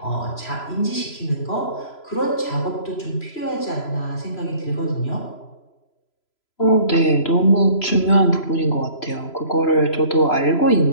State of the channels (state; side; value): late; right; 3.0 ms